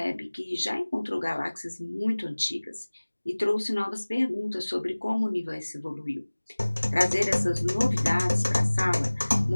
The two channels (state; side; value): inverted; both; correlation -1.00